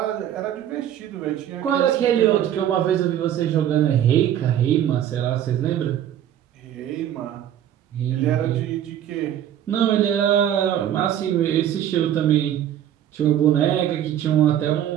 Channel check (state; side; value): quieter; left; 10.8 dB